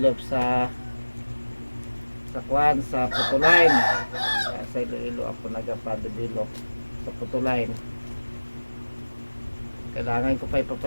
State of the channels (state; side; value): inverted; both; correlation -1.00